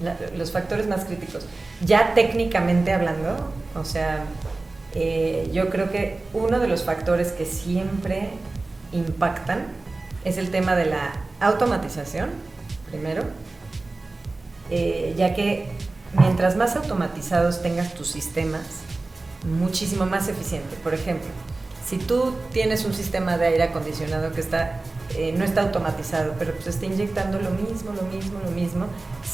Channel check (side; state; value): left; quieter; 3.3 dB